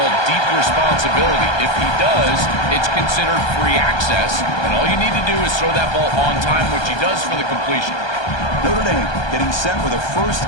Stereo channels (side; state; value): right; late; 1.2 ms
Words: deep responsibility. If he does, it's considered free access, and all you need to do is throw that ball on time, which he does for the completion. Notre Dame getting set with a